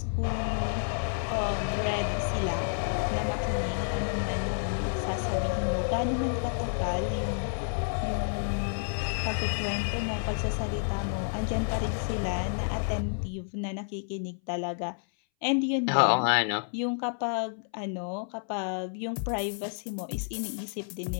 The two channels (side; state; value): right; silent; 58 dB below the other